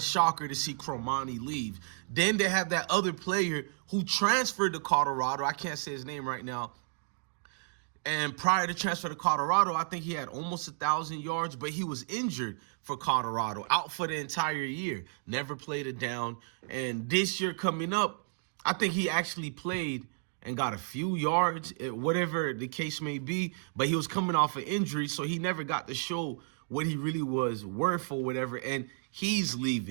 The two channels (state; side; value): silent; left; digital silence